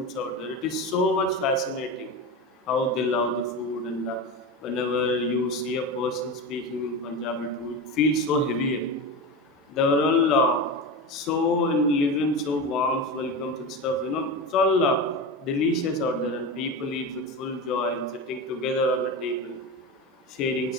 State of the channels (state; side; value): normal; both; correlation 0.23